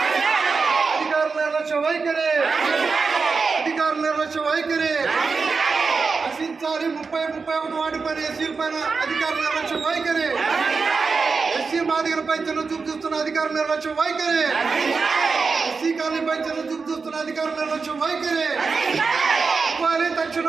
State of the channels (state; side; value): quieter; left; 4.7 dB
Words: అధికారుల నిర్లక్ష్య వైఖరి నశించాలి. 31 వార్డు పైన ఎస్సీల పైన అధికారుల నిర్లక్ష్య వైఖరి, ఎస్సీ మాదిగలపై చిన్న చూపు చూస్తున్న అధికారుల నిర్లక్ష్య వైఖరి, ఎస్సీ కాలనీపై చిన్న చూపు చూస్తున్న అధికారుల నిర్లక్ష్య వైఖరి. ఇవ్వాలి